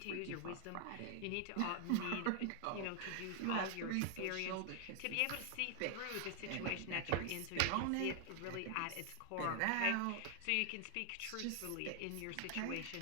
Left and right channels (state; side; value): different; both; correlation 0.00